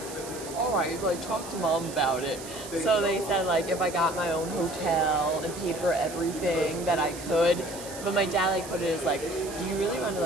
all right, like talk to mom about it. So they said like if I got my own hotel and paid for everything that I could. But my dad like put it as like, do you really want to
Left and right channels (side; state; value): right; noise; hiss, 13 dB below the sound